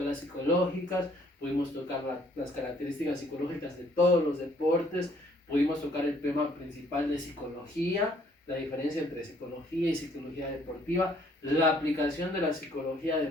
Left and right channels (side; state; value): both; normal; correlation 0.63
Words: psicológicas, pudimos tocar las características psicológicas de todos los deportes, pudimos tocar el tema principal de psicología, la diferencia entre psicología y psicología deportiva, la aplicación de la psicología